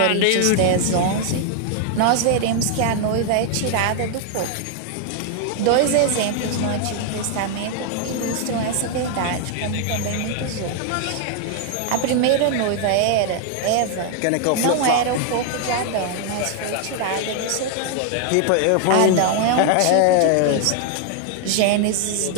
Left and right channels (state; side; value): different; both; correlation 0.00